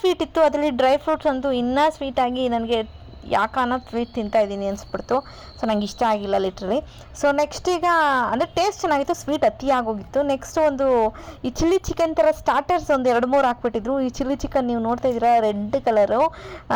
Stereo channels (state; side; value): identical; both; correlation 1.00